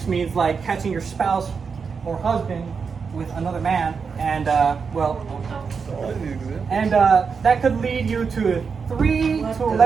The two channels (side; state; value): left; quieter; 5.6 dB